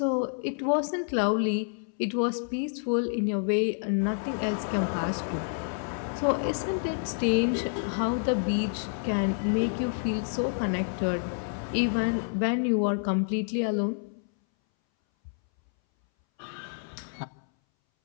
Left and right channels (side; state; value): right; silent; 59 dB below the other